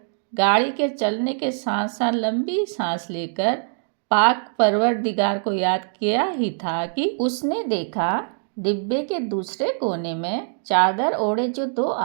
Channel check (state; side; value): silent; left; digital silence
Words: गाड़ी के चलने के साथ साथ लंबी सांस लेकर पाक परवरदिगार को याद किया ही था कि उसने देखा डिब्बे के दूसरे कोने में चादर ओढ़े जो दो